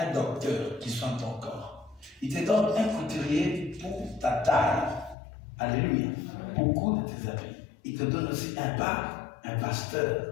docteur qui soigne ton corps. Il te donne un couturier pour ta taille. Alléluia. Pour coudre tes habits. Il te donne aussi un pasteur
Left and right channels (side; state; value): right; drops out; at 5.2 s